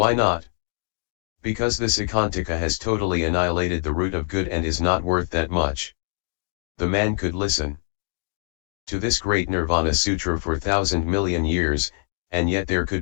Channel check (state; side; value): silent; right; digital silence